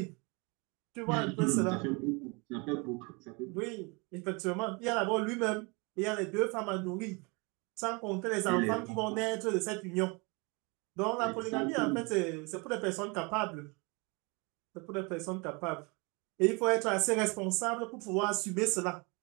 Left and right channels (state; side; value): quieter; left; 29.3 dB